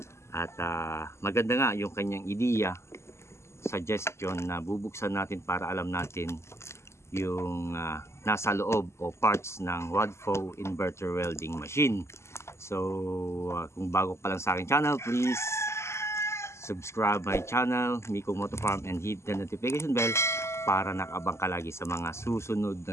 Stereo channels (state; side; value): late; right; 0.13 ms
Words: at maganda nga yung kanyang ideya, suggestion na bubuksan natin para alam natin yung nasa loob o parts ng Wadfo inverter welding machine. So kung bago pa lang sa aking channel, please subscribe my channel, Miko Moto Farm, and hit the notification bell para nakabang ka lagi sa mga susunod